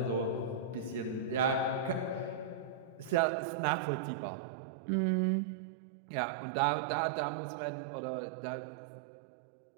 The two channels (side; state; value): left; drops out; at 3.2 s